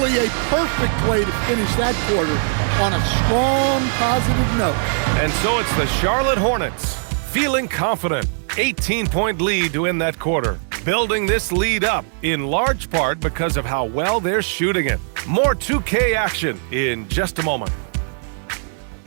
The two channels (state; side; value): silent; left; digital silence